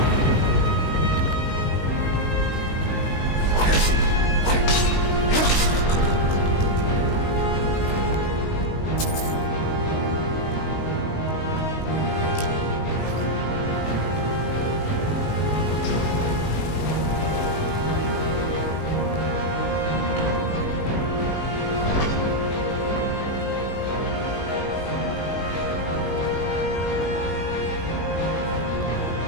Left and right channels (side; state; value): right; late; 19 ms